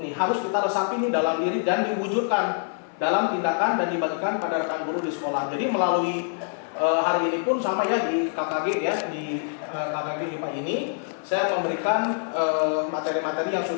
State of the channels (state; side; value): silent; right; 56 dB below the other